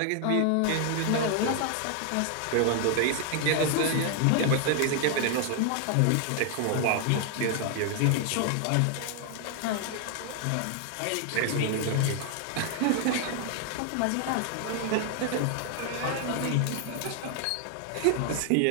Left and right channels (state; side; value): different; both; correlation 0.00